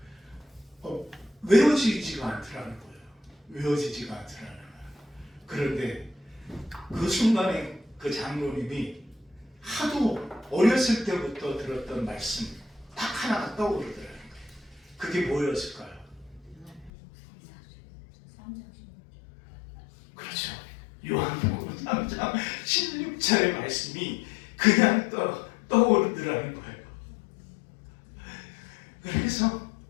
외워지지가 않더라는 거예요. 외워지지가 않더라는 거예요. 그런데 그 순간에 그 장로님이 하도 어렸을 때부터 들었던 말씀 딱 하나가 떠오르더라는 거예요. 그게 뭐였을까요? 그렇죠. 요한복음 3장 16절의 말씀이 그냥 떠오르더라는 거예요. 그래서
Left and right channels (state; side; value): drops out; right; at 16.9 s